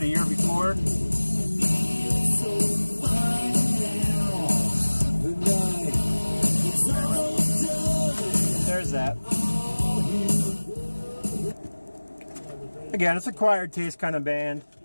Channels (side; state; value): both; inverted; correlation -1.00